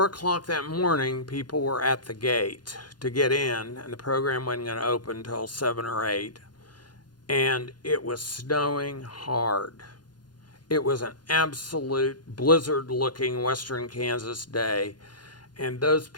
o'clock that morning, people were at the gate to get in, and the program wasn't going to open until 7 or 8. And it was snowing hard. It was an absolute blizzard-looking western Kansas day, and those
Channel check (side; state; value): right; late; 0.70 ms